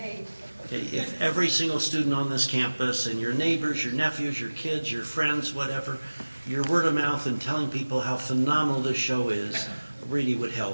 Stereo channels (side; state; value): both; inverted; correlation -1.00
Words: 8th. Okay, if every single student on this campus and your neighbors, your nephews, your kids, your friends, whatever, your word of mouth and telling people how phenomenal this show is really would